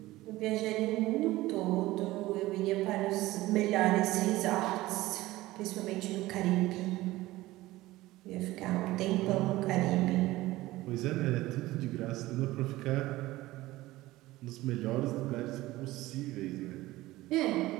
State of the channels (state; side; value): quieter; left; 17.8 dB